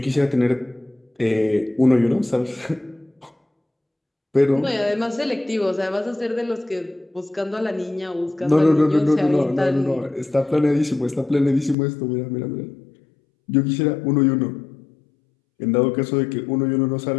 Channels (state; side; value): drops out; right; at 11.8 s